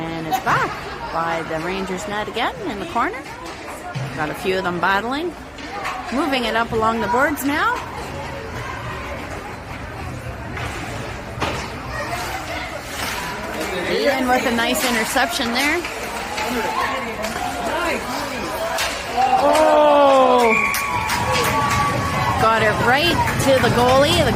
it's back by the Rangers net again in the corner. Got a few of them battling. Moving it up along the boards now. Ian with a nice interception there. Oh! Got it right to the goalie. The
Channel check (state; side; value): identical; both; correlation 1.00